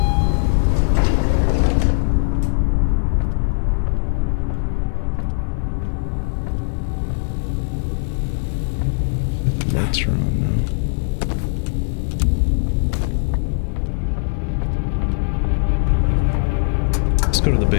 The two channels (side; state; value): right; silent; 66 dB below the other